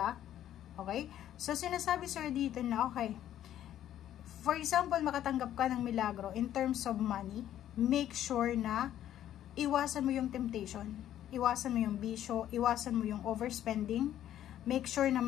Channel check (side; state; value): right; quieter; 11.6 dB